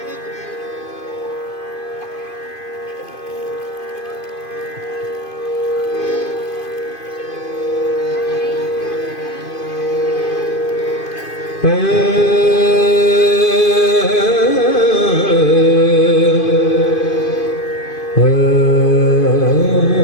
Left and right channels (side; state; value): right; late; 2.5 ms